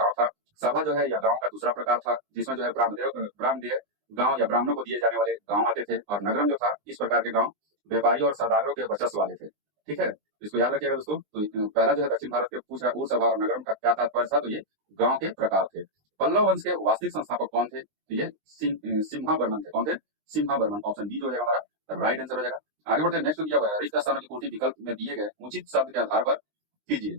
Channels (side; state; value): left; late; 20 ms